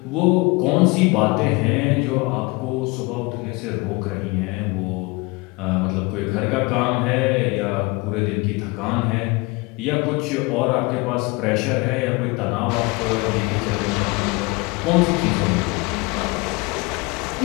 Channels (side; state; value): right; quieter; 25.7 dB